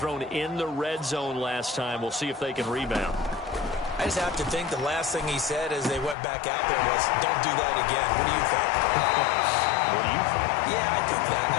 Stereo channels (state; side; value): drops out; right; at 6.2 s